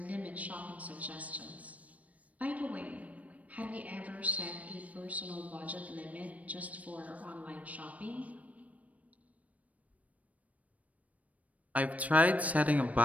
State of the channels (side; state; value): left; late; 0.068 ms